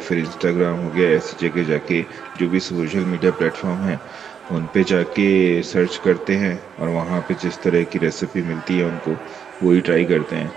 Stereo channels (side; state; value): left; quieter; 7.6 dB